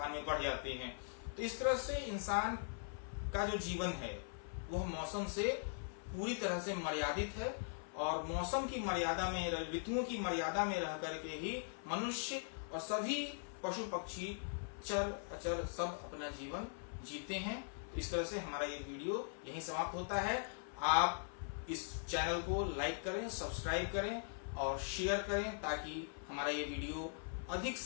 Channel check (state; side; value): silent; right; 50 dB below the other